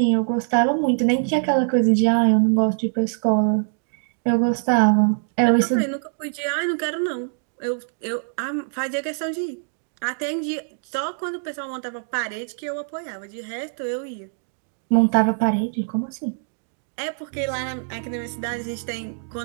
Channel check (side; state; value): left; silent; digital silence